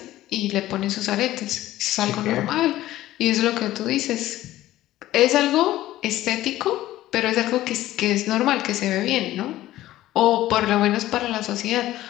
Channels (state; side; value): quieter; right; 15.1 dB